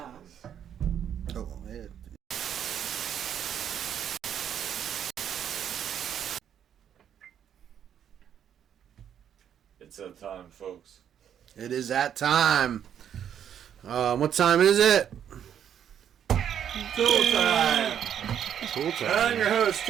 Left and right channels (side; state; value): left; quieter; 9.2 dB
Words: Oh, yeah. It's that time, folks. It is that time. What time is it? Tool time. Cool time. I'm your host,